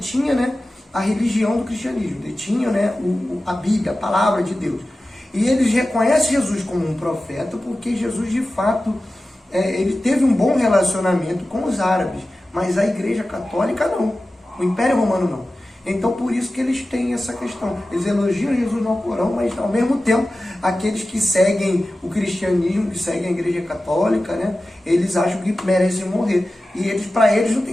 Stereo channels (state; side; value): normal; both; correlation 0.95